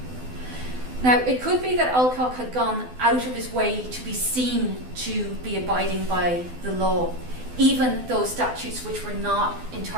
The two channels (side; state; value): left; late; 12 ms